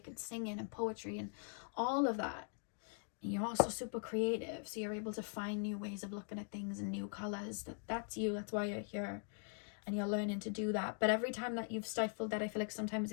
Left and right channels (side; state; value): right; silent; 50 dB below the other